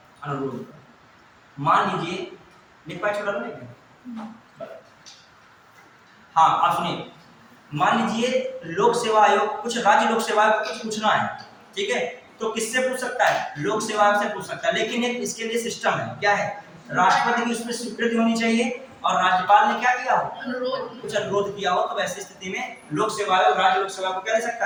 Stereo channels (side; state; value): both; identical; correlation 1.00